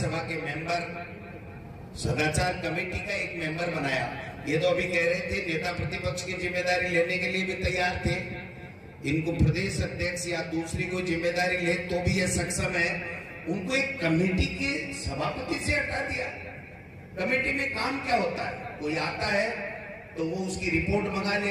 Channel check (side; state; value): both; identical; correlation 1.00